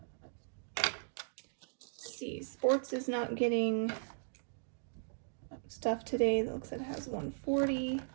Let's see, sports is not getting stuff today. It looks like it has 140.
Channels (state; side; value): silent; left; digital silence